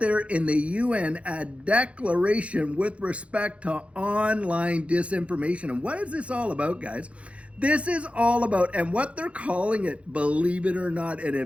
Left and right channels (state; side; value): late; left; 0.062 ms